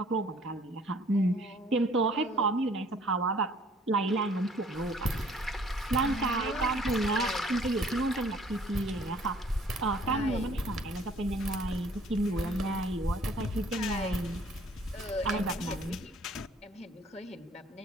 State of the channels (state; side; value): normal; both; correlation 0.57